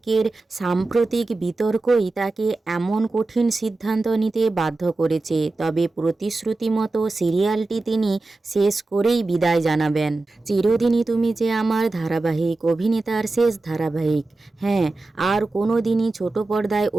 সাম্প্রতিক বিতর্কই তাকে এমন কঠিন সিদ্ধান্ত নিতে বাধ্য করেছে। তবে প্রতিশ্রুতি মতো সিরিয়ালটি তিনি শেষ করেই বিদায় জানাবেন। চিরদিনই তুমি যে আমার ধারাবাহিক অভিনেতার শেষ ধারাবাহিক। হ্যাঁ, আর কোনো দিনই ছোট পর্দায়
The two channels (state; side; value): quieter; left; 3.2 dB